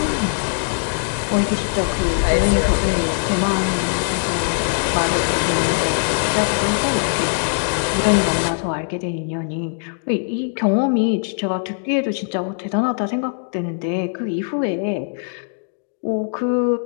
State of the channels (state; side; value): silent; right; digital silence